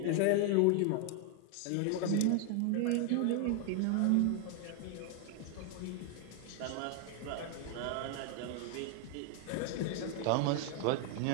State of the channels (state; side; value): different; both; correlation 0.01